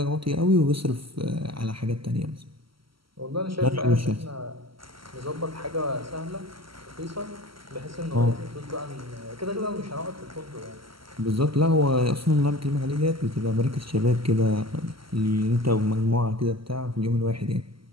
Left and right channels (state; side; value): late; left; 0.74 ms